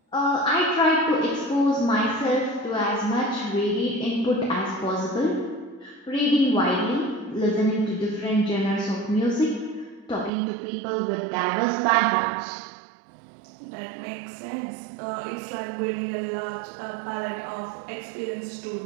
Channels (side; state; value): left; drops out; at 10.3 s